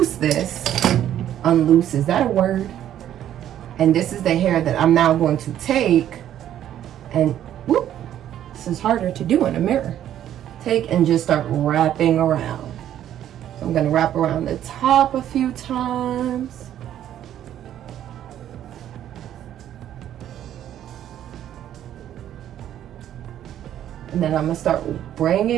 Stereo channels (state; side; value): quieter; left; 11.2 dB